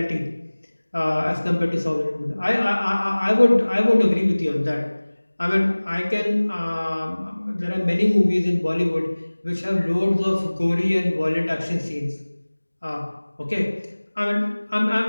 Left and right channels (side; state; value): both; inverted; correlation -1.00